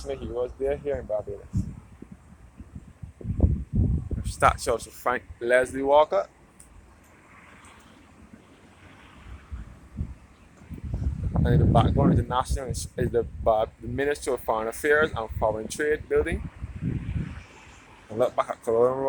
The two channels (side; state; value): both; identical; correlation 1.00